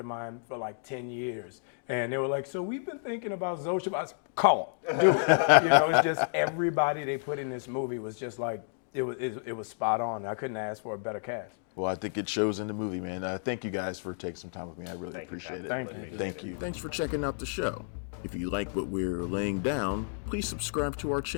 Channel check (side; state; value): right; silent; digital silence